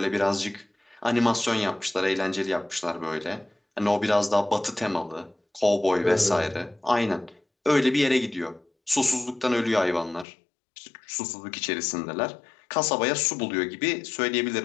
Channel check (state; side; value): drops out; right; at 10.2 s